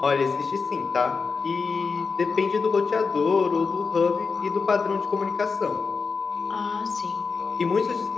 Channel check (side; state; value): right; quieter; 4.9 dB